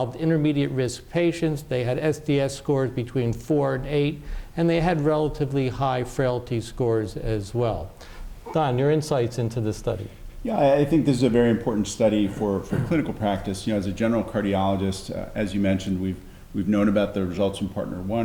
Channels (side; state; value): both; identical; correlation 1.00